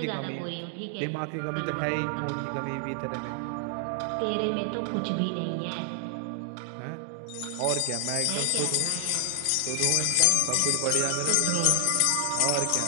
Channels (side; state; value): both; different; correlation 0.00